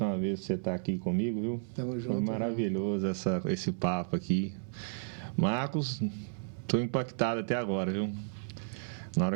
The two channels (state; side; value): silent; left; 56 dB below the other